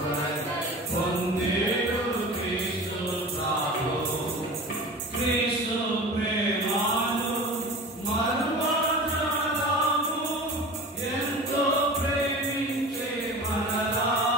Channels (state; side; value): normal; both; correlation 0.35